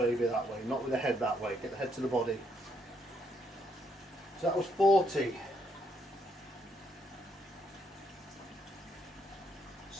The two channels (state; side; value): normal; both; correlation 0.73